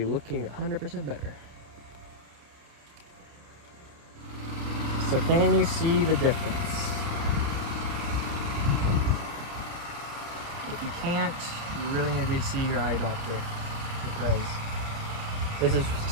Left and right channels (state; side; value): late; left; 29 ms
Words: looking 100% better. So can you see the difference? If you can't, you really need to see your eye doctor, because this is